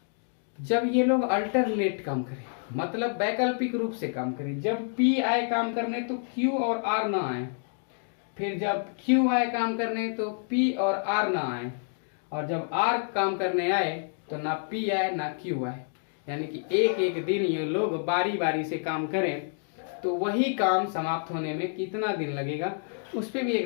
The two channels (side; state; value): right; silent; 59 dB below the other